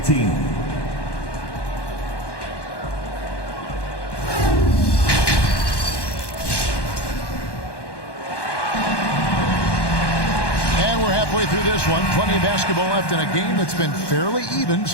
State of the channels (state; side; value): late; right; 1.1 ms